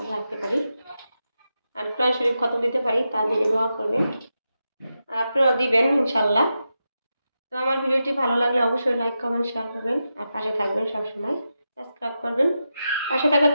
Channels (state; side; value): inverted; both; correlation -0.89